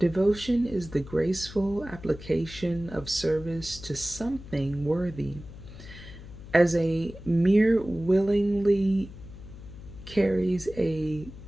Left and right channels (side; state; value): left; noise; hum, 15 dB below the sound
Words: is the graceful application of service to something worthy. As a mere willingly carries a